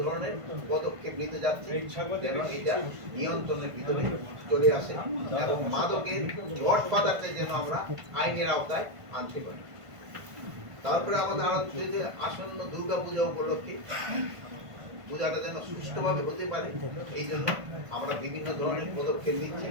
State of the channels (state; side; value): late; left; 1.5 ms